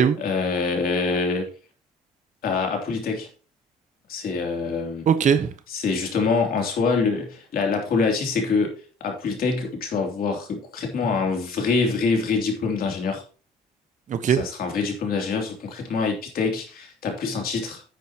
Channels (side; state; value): both; normal; correlation 0.49